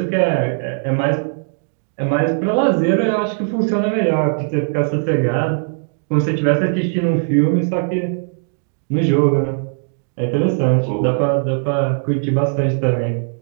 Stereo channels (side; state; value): left; silent; digital silence